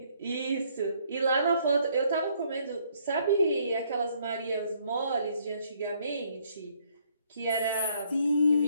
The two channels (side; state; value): both; inverted; correlation -0.67